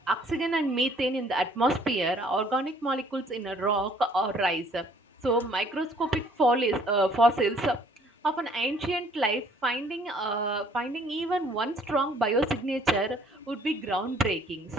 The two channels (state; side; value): normal; both; correlation 0.59